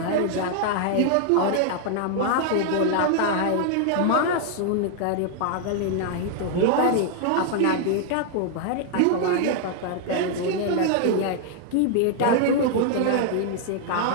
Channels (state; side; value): different; both; correlation 0.00